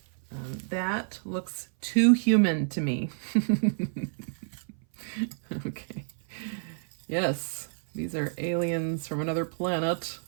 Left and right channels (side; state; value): left; silent; 58 dB below the other